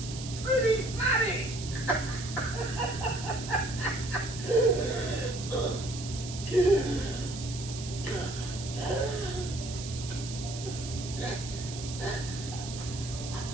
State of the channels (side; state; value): right; noise; hiss, 10 dB below the sound